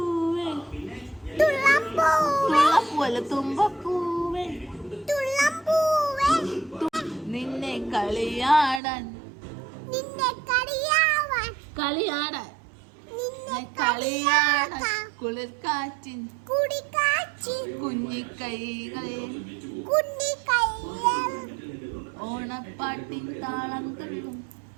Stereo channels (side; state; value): left; drops out; at 8.8 s